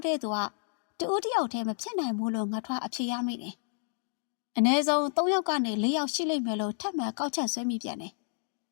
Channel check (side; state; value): right; silent; digital silence